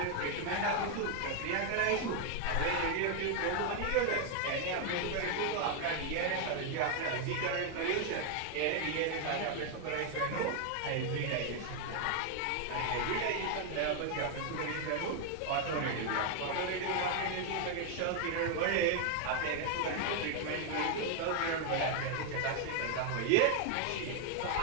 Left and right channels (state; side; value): different; both; correlation 0.00